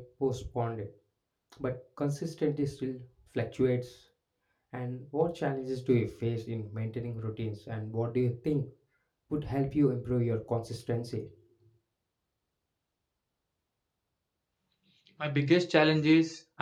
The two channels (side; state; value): both; identical; correlation 1.00